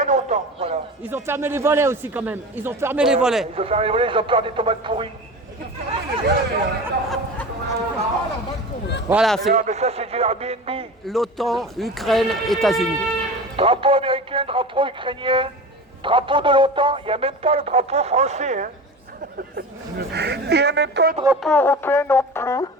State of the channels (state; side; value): normal; both; correlation 0.31